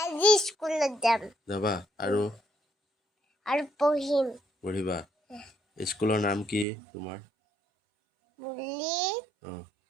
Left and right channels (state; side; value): drops out; left; at 6.7 s